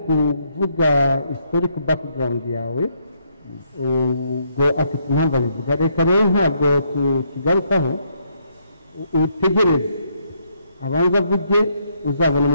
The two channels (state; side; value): inverted; both; correlation -0.73